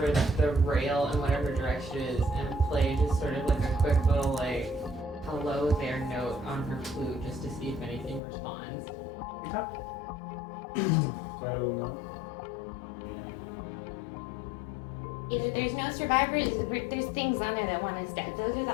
the rail in whatever direction it is and play just sort of like a quick little hello there note on her flute just to see if anything responds. Okay. Play a little note. Either there's no survivors, or there's things on there that want us dead. Those are the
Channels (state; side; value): drops out; right; at 8.2 s